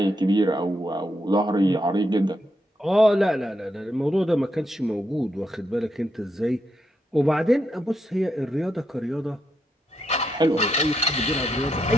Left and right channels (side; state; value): both; normal; correlation 0.81